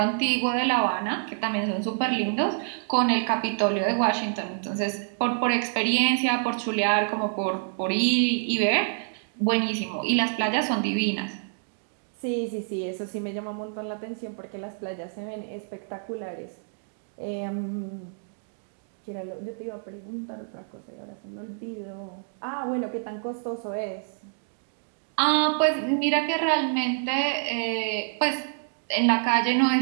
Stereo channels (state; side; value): silent; left; digital silence